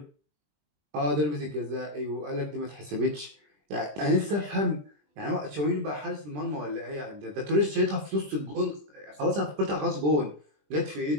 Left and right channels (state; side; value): late; left; 20 ms